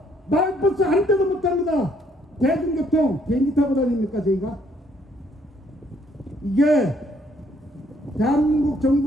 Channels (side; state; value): both; normal; correlation 0.67